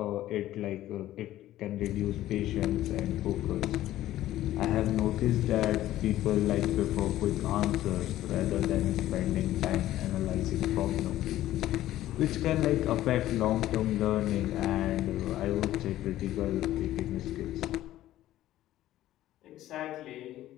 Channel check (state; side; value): quieter; right; 14.1 dB